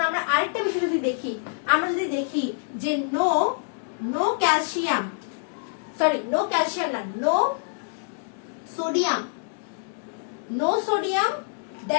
আমরা আরেকটা বিষয় যদি দেখি, আমরা যদি দেখি যে নো ক্যালসিয়াম না, no sodium,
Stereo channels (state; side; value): silent; right; digital silence